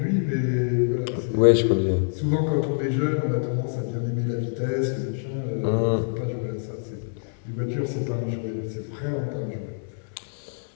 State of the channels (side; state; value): right; silent; digital silence